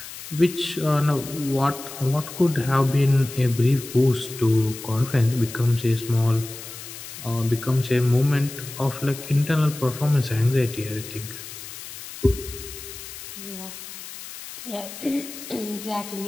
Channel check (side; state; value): left; noise; hiss, 12 dB below the sound